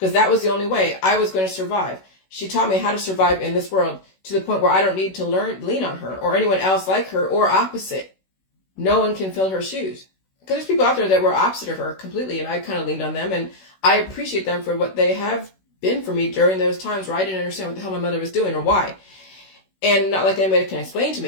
that was the only way I was going to survive. She taught me how to survive in this world to the point where I don't need to lean on her or anyone else like her or opposite. No one can fill her shoes. Because there's people out there that were opposite of her completely, and I kind of leaned on them, and I appreciate them for what they have been for me during those times where I didn't understand what the hell my mother was doing or why. And not like anybody can explain to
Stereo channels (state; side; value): late; right; 16 ms